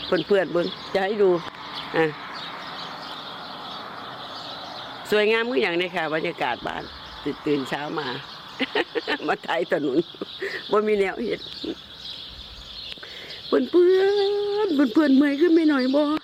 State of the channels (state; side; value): identical; both; correlation 1.00